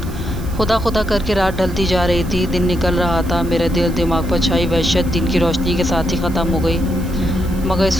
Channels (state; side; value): noise; right; hiss, 19 dB below the sound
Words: خدا خدا کر کے رات ڈھلتی جا رہی تھی، دن نکل رہا تھا۔ میرے دل دماغ پر چھائی وحشت دن کی روشنی کے ساتھ ہی ختم ہو گئی مگر